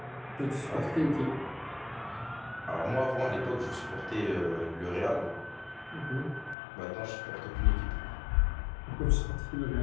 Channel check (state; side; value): drops out; right; at 6.6 s